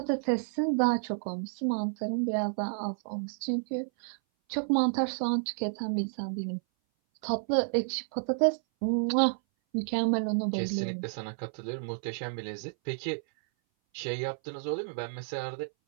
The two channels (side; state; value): left; silent; 57 dB below the other